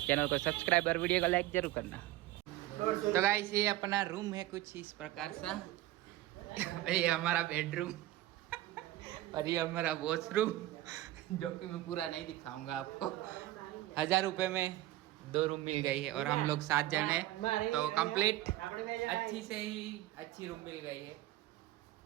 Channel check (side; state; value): left; quieter; 16.0 dB